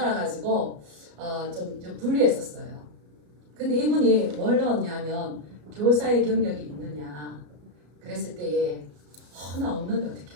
좀 불리했었어요. 근데 이분이 뭘 넣었냐면 교사의 경력이 있느냐 그랬을 때에 나 없는데 어떻게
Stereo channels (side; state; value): left; late; 33 ms